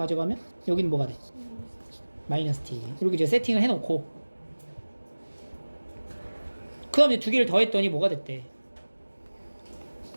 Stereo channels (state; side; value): inverted; both; correlation -1.00